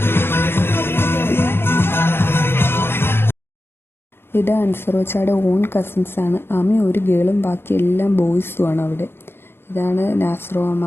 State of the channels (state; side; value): late; right; 0.11 ms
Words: ഇത് അൻസറോച്ചയുടെ ഓൺ കസിൻസാണ്. ആമി ഒരു ഗേളും ബാക്കി എല്ലാം ബോയ്സുമാണ് അവിടെ. ഇതാണ് നാസ്രോ